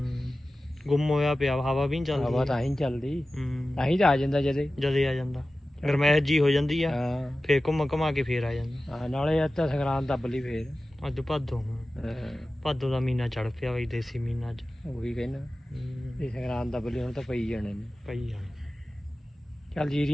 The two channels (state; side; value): normal; both; correlation 0.95